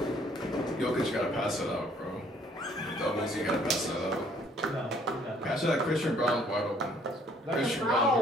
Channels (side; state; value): both; normal; correlation 0.61